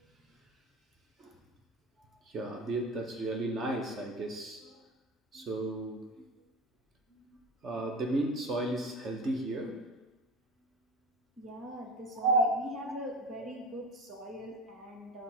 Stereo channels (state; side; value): normal; both; correlation 0.31